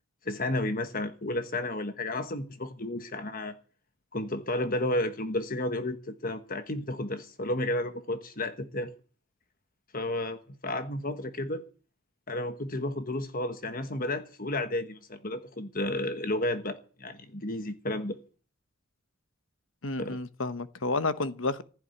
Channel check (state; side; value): normal; both; correlation 0.16